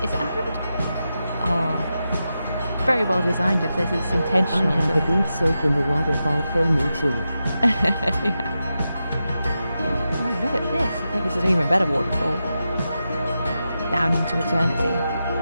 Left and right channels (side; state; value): both; inverted; correlation -0.90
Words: Is it a hand? Oh. Very well designed if this is intentional. I have a good soak in the waterfall for me too. Yeah. Oh, look at this. I think this is an even better waterfall. Down into eternity.